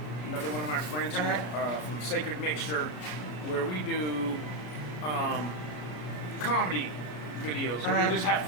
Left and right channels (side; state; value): right; late; 33 ms